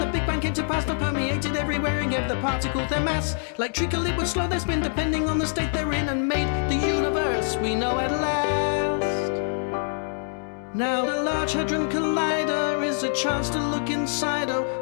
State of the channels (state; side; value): silent; right; digital silence